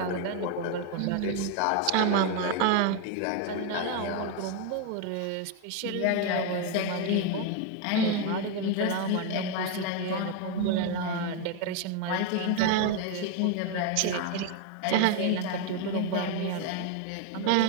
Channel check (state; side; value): different; both; correlation 0.02